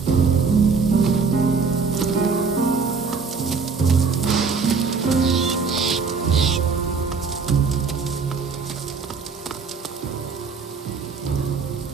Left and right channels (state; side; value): quieter; left; 4.9 dB